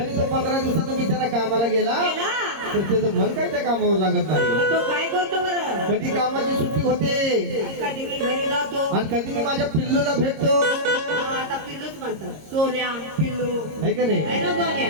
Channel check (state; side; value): late; left; 26 ms